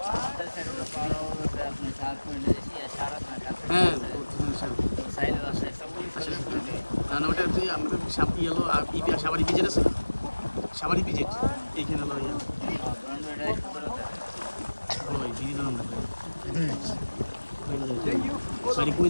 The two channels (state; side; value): inverted; both; correlation -1.00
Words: হ্যাঁ না না ওটা হচ্ছে আমাদের ইয়েলো সাবারি পিজেট আছে, সাবারি পিজেট এইখানে হলো ইয়ে ওই দিদি নাম সরি কই